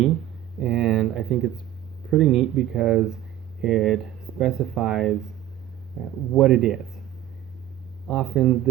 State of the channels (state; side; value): quieter; left; 12.7 dB